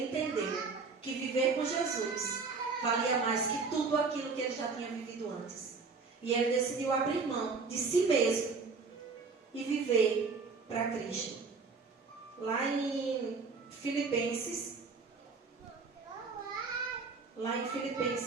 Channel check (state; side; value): quieter; left; 4.6 dB